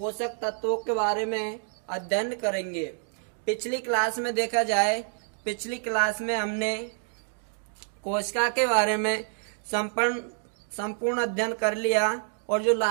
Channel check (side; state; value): left; silent; digital silence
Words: तत्वों के बारे में अध्ययन करेंगे। पिछली क्लास में देखा जाए, पिछली क्लास में हमने कोशिका के बारे में संपूर्ण अध्ययन कर लिया और जो